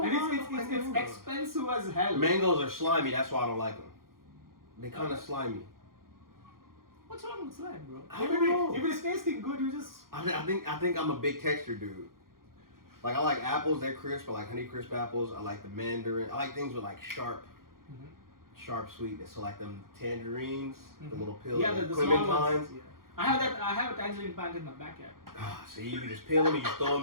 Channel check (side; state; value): left; late; 0.92 ms